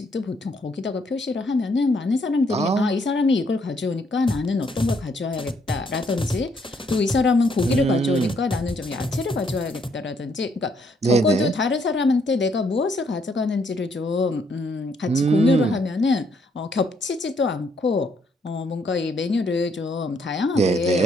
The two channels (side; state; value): both; normal; correlation 0.70